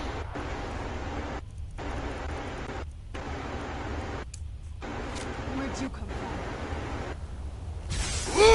Where'd you come from?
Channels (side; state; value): both; identical; correlation 1.00